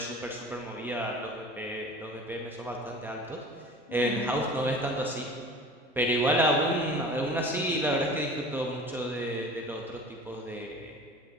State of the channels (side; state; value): both; normal; correlation 0.41